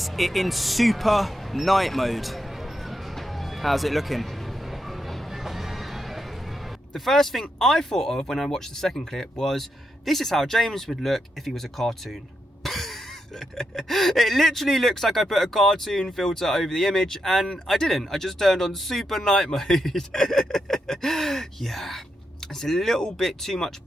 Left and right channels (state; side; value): normal; both; correlation 0.83